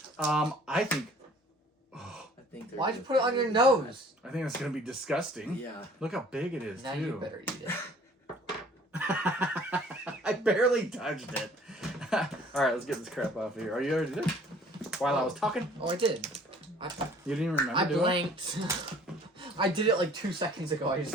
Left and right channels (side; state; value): both; normal; correlation 0.53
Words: I think Why'd you put it on your nose? I think that's gonna be disgusting. Yeah. Look how big it is. Now too. you better eat it. I barely touched it. All right, let's get this crap off of here. Are you ready to do it? While I was talking? Oh, I did. You didn't even remember I doing blanked. I did it like 2 seconds ago. I just